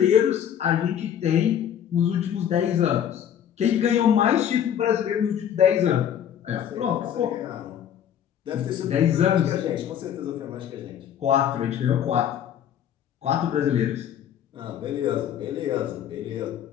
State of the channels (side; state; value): right; quieter; 9.6 dB